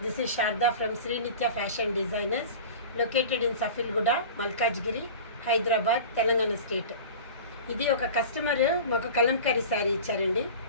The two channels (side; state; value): both; inverted; correlation -0.36